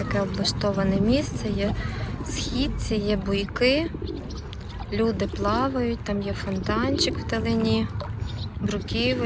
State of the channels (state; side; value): identical; both; correlation 1.00